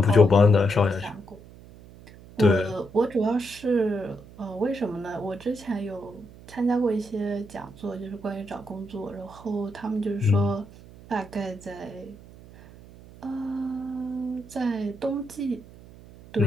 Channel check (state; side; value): noise; right; hum, 20 dB below the sound